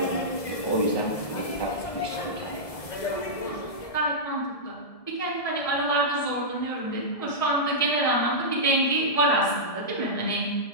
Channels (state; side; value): late; right; 1.7 ms